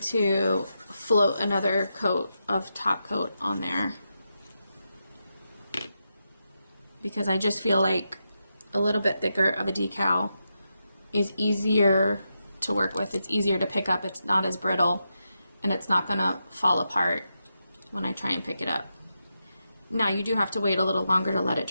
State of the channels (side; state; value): both; inverted; correlation -0.87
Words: float another coat of top coat on there. Because I just feel like a little bit thicker of a decal is easier to work with. It's easier to pick up. It's not as brittle and it's not going to fall apart when I try and pick it up. Now you do have to wait a little longer to let it